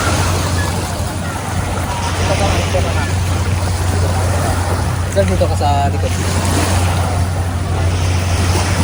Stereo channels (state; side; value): identical; both; correlation 1.00